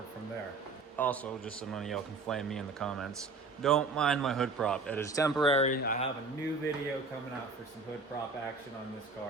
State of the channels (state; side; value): quieter; left; 3.9 dB